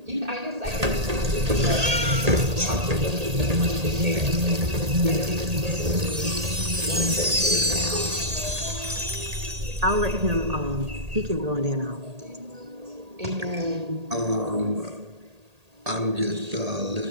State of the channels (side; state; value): left; late; 1.8 ms